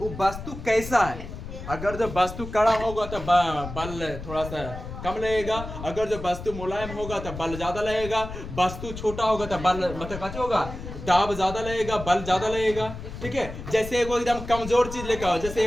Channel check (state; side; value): noise; left; rumble, 10 dB below the sound